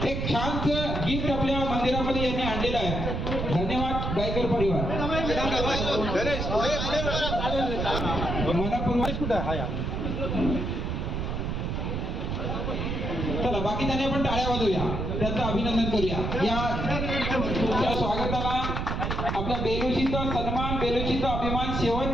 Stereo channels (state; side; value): noise; right; rumble, 2 dB below the sound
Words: एक छानसं गिफ्ट आपल्या मंदिरामध्ये यांनी आणलेलं आहे. धन्यवाद गायकर परिवार. मनपूर्वक कुठं आहे. चला बाकी त्यांनी आपण टाळ्या वाजवूया, त्यांचं अभिनंदन करूया. या स्वागताला आपल्या बेलोशीचा सन्मान, बेलोशीचा अभिमान